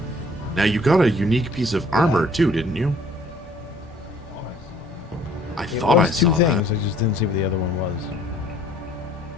Now you got a unique piece of armor too, didn't you? I It thought I was two saw things. that. I just didn't see what the other one was.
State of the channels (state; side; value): normal; both; correlation 0.57